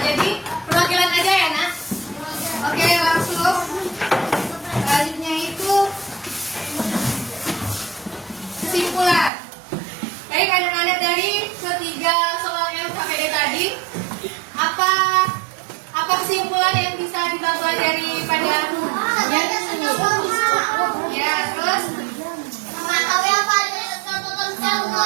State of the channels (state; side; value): drops out; left; at 9.3 s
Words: kesimpulan yang bisa kita pelajari pada ya, terus Mengetahui apa ada sesuatu tentang